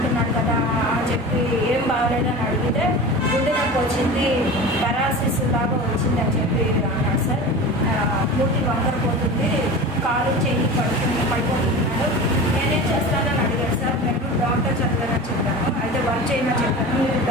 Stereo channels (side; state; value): both; normal; correlation 0.32